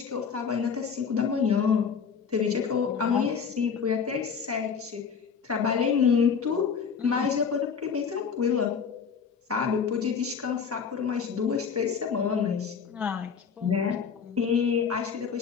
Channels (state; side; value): quieter; right; 6.4 dB